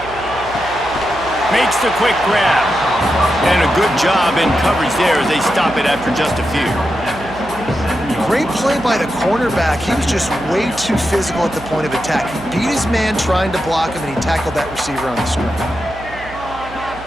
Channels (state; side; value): noise; right; hum, 16 dB below the sound